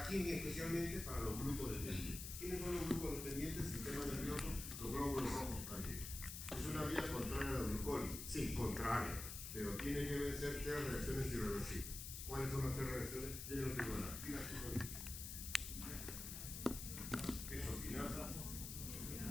quién? Especialmente para los glucodependientes. ¿Quiénes son los glucodependientes? Sistema nervioso, los glóbulos rojos también. ¿Es una vía contraria a la glucólisis? Sí, contraria. Pero tiene que vencer tres reacciones irreversibles. ¿Cuáles son las tres reacciones? Yo no tengo nada. Quesoquinasa,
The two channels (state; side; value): noise; left; hiss, 7 dB below the sound